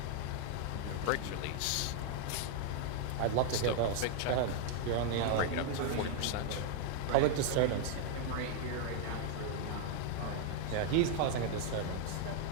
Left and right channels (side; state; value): both; different; correlation 0.00